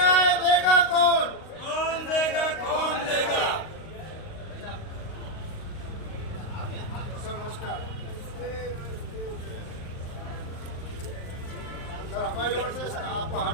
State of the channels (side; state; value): right; late; 38 ms